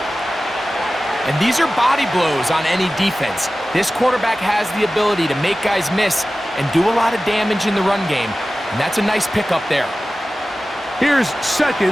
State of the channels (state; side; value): normal; both; correlation 0.96